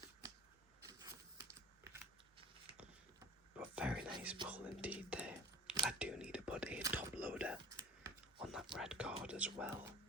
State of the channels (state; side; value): normal; both; correlation 0.43